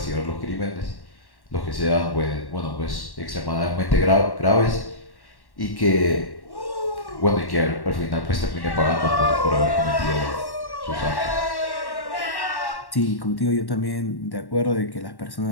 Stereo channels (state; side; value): late; right; 1.1 ms